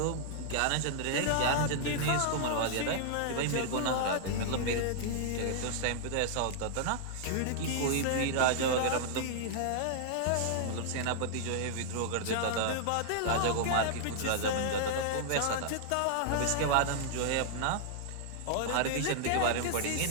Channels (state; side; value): different; both; correlation -0.01